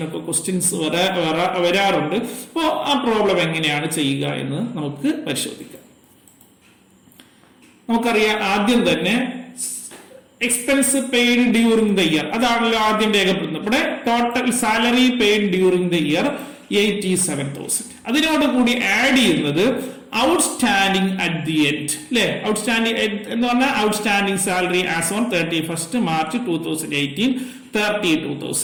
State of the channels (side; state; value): both; identical; correlation 1.00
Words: ക്വസ്റ്റ്യൻസ് വരാറുണ്ട്. അപ്പോൾ ആ പ്രോബ്ലം എങ്ങനെയാണ് ചെയ്യുക എന്ന് നമുക്ക് പരിശോധിക്കാം. നമുക്കറിയാം, ആദ്യം തന്നെ expense paid during the year, അതാണല്ലോ ആദ്യം രേഖപ്പെടുത്തുന്നത്. ഇവിടെ total salary paid during the year 87,000. അതിനോട് കൂടി ആഡ് ചെയ്യുന്നത് ഔട്ട്സ്റ്റാൻഡിംഗ് അറ്റ് ദി എൻഡ്, അല്ലെ? ഔട്ട്സ്റ്റാൻഡിംഗ് എന്ന് പറഞ്ഞാൽ outstanding salary as on 31st March 2018